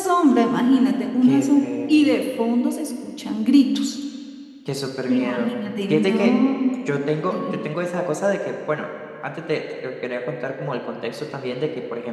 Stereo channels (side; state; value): both; identical; correlation 1.00